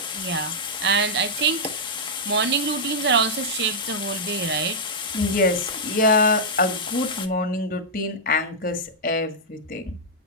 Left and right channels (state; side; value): normal; both; correlation -0.08